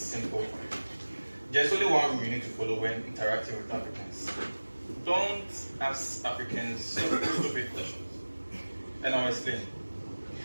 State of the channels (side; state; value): both; inverted; correlation -1.00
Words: There's only one rule you need to follow when interacting with Africans. Don't ask Africans stupid questions. And I'll explain.